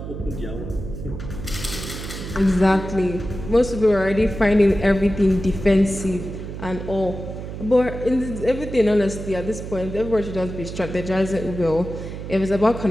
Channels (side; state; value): right; noise; hum, 9 dB below the sound